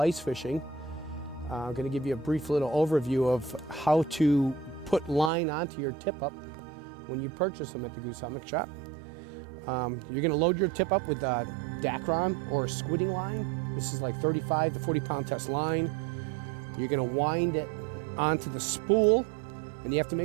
fishing. I'm going to give you a brief little overview of how to put line onto your tip-up when you purchase them at the Goose Hummock Shop. You're going to load your tip-up with Dacron or squidding line. This is like 35 to 40 pound test line. You're going to wind it onto the spool, and you have to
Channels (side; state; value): left; drops out; at 5.3 s